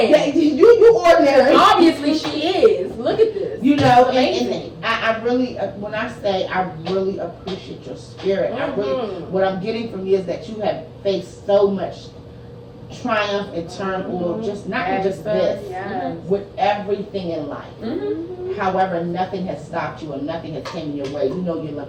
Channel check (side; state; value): both; identical; correlation 1.00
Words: You ordinary. Obviously she is. Look at this. You know, and I really, when I say I really appreciate your spirit, I really, what I'm getting from you is that you have faced so much triumph and turmoil, just not just this, with everything in life. However, nothing has stopped you and nothing has came in your way. You know your